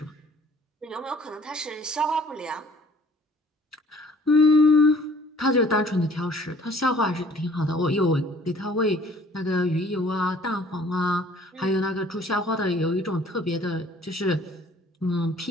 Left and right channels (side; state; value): both; normal; correlation 0.55